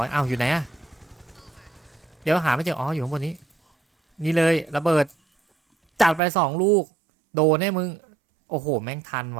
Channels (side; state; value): left; drops out; at 6.2 s